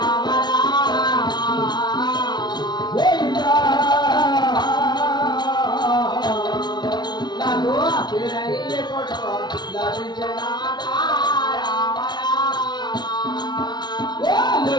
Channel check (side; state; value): right; late; 0.20 ms